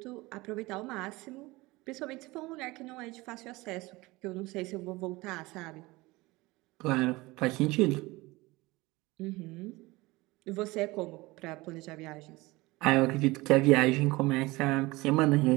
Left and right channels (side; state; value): left; quieter; 21.6 dB